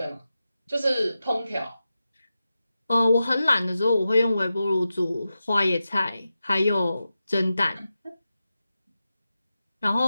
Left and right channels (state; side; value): inverted; both; correlation -0.92